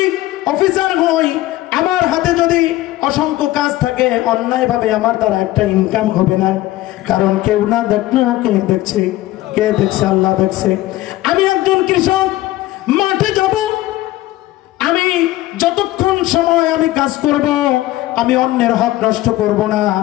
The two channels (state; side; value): quieter; right; 16.4 dB